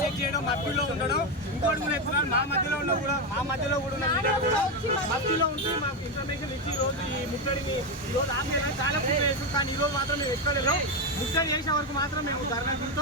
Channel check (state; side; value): normal; both; correlation 0.10